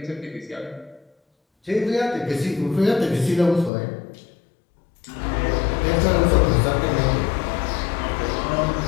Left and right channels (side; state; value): right; drops out; at 3.7 s